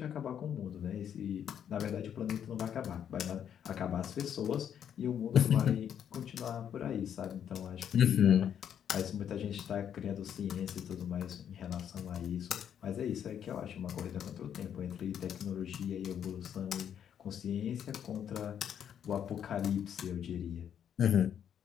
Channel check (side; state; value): right; quieter; 9.0 dB